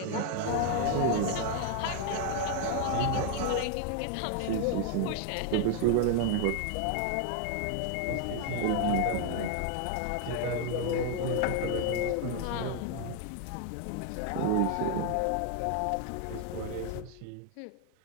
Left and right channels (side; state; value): both; different; correlation 0.00